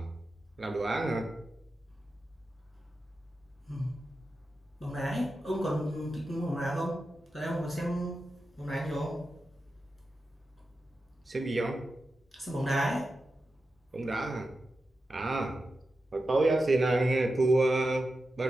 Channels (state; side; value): normal; both; correlation 0.91